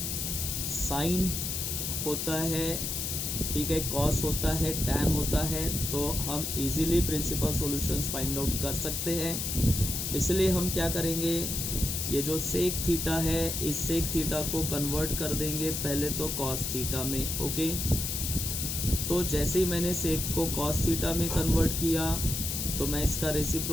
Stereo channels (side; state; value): left; noise; hiss, 2 dB below the sound